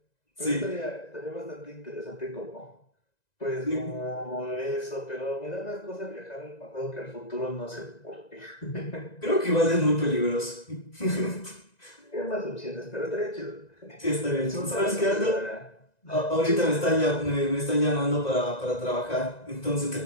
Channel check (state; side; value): late; right; 1.9 ms